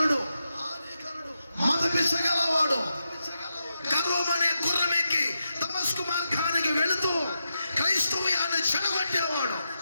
మదపిసగలవాడు గర్వమనే గుర్రమెక్కి దమస్కు మార్గానికి వెళుతూ క్రైస్తవ్యాన్ని చెడగొట్టేవాడు,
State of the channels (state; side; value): inverted; both; correlation -0.87